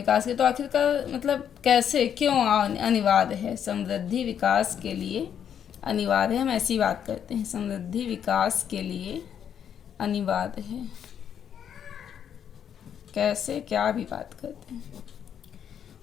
के, तो आखिरकार मतलब कैसे, क्यों अनिवार्य है, समृद्धि विकास के लिए अनिवार्य है। हम ऐसी बात करते हैं, समृद्धि विकास के लिए अनिवार्य है, कैसे, क्या भी बात करते हैं।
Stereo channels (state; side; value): quieter; right; 8.7 dB